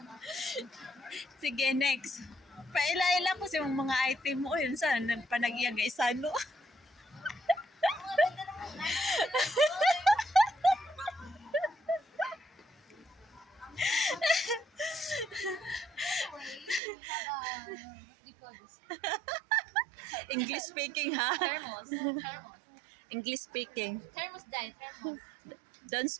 Sige, next. Paila-ila ko sa mga item mo. Yun saan? Panag-iyag isano. Mga ganda naman. English speaking, ha? Thermos. Thermos. English speaking. Thermos dye. Thermos. Don't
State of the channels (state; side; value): drops out; left; at 16.8 s